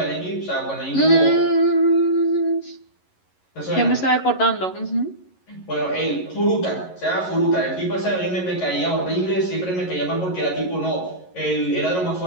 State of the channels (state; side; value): late; right; 11 ms